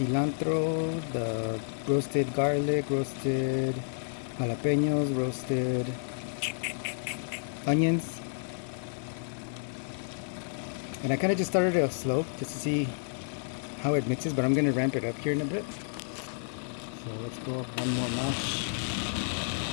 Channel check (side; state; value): right; silent; digital silence